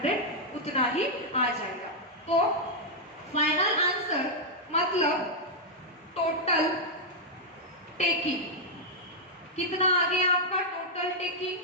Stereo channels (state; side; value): normal; both; correlation -0.04